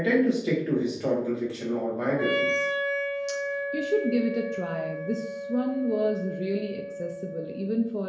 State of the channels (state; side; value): identical; both; correlation 1.00